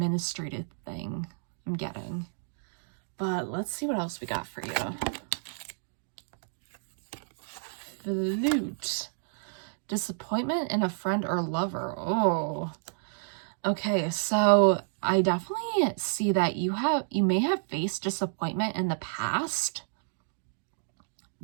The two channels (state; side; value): silent; left; digital silence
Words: thing I'm getting. But let's see what else we got for you. Flute. Disappointment in a friend or lover. Oh. Okay, so I definitely see that you may have faced disappointment in the past.